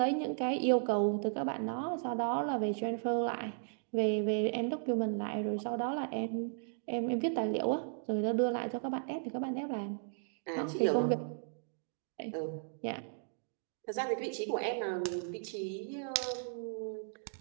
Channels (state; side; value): silent; left; digital silence